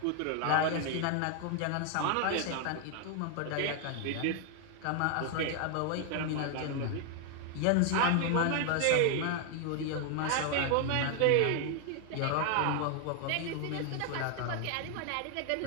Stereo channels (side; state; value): both; different; correlation 0.00